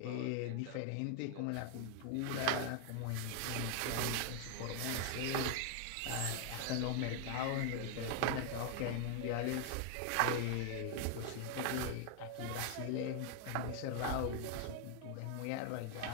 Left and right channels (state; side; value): different; both; correlation 0.00